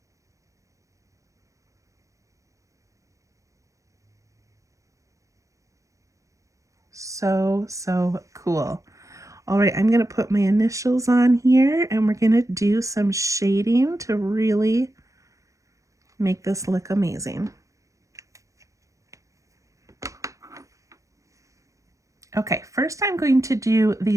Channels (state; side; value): late; left; 0.16 ms